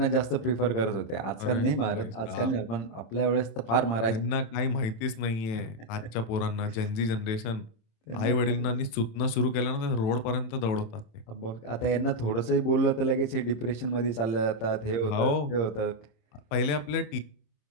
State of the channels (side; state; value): right; late; 27 ms